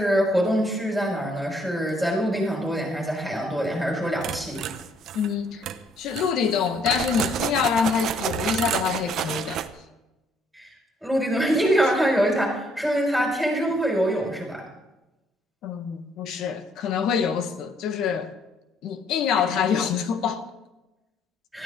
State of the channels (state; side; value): normal; both; correlation 0.67